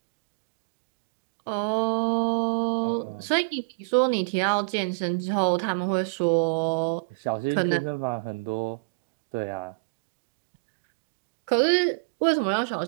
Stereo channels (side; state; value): left; quieter; 33.0 dB